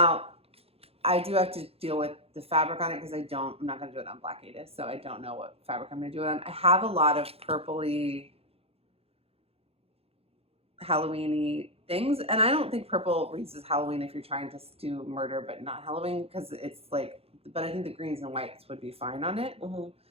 I do have to deal with the fabric on it because I'm not going to do it on Black Ada, so I don't know what fabric I'm going to do it on. I have a lot of purpley, Halloween-y things, and I don't think purple reads as Halloween if you're trying to do murder but not Halloween, because it's like, but I think the greens and whites would be fine on it. Mm-hmm.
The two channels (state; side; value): late; left; 0.29 ms